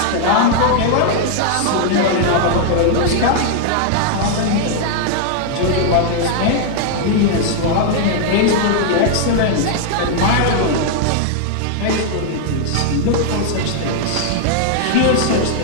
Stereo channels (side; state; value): both; different; correlation 0.00